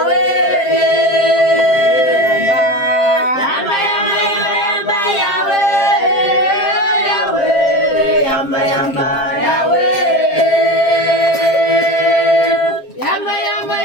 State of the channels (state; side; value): late; right; 7.5 ms